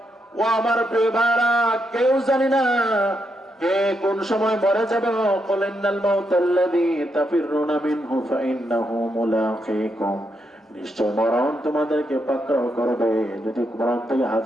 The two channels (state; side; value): normal; both; correlation 0.81